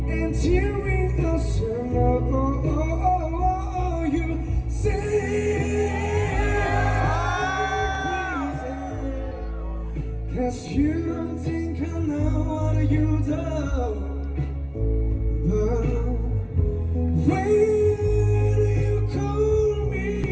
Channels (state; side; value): identical; both; correlation 1.00